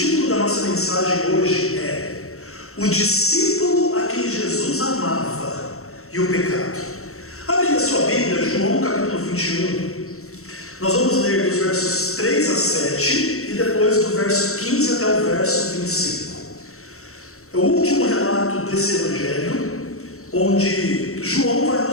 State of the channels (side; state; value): right; late; 0.63 ms